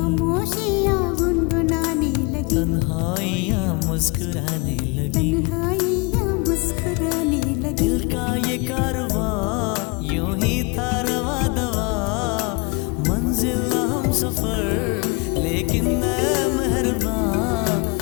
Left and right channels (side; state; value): right; quieter; 28.3 dB